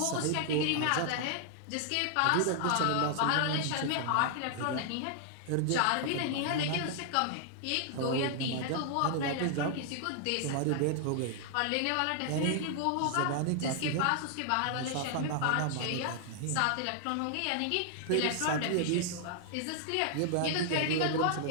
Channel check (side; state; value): both; different; correlation 0.00